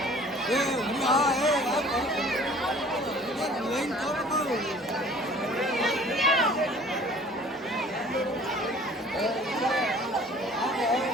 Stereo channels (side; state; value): both; normal; correlation 0.50